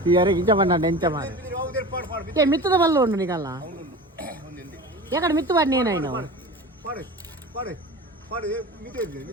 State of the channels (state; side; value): normal; both; correlation 0.33